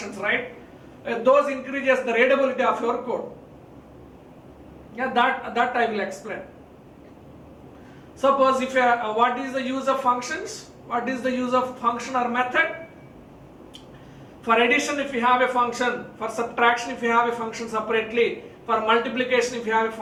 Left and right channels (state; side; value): identical; both; correlation 1.00